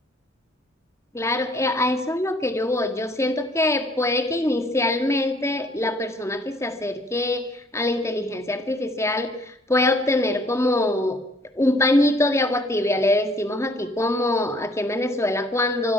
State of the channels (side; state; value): both; normal; correlation 0.59